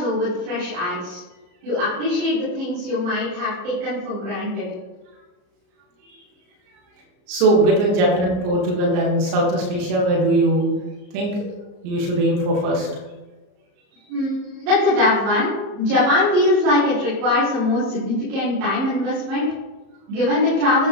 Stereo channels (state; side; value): late; left; 34 ms